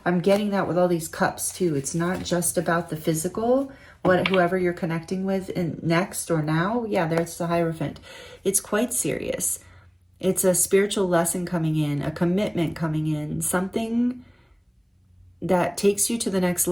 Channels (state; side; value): identical; both; correlation 1.00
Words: I'm getting that with all these cups too. It's not just about the physical, whoever you're connecting with in next or now. Yeah, there's the Hierophant. It's quite serious. It's a spiritual lesson coming in, a commitment coming in, something that takes you to the next